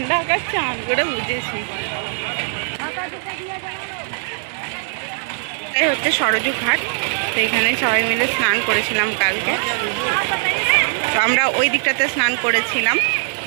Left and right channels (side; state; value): left; silent; digital silence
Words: আকাশ চান করে বুঝেছি। এই হচ্ছে সরজু ঘাট, তো এখানে সবাই মিলে স্নান করেছিলাম কালকে, তো আমরা ওই দিকটাতে স্নান করেছিলাম।